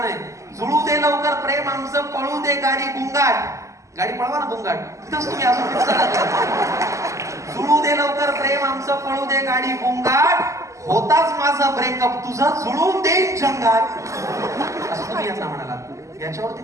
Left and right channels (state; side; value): late; left; 0.15 ms